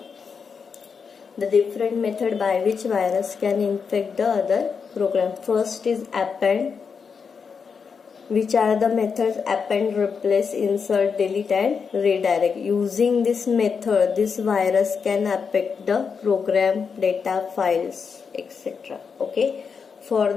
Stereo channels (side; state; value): right; quieter; 5.9 dB